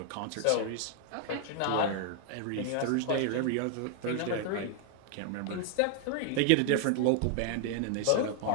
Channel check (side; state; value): both; different; correlation 0.00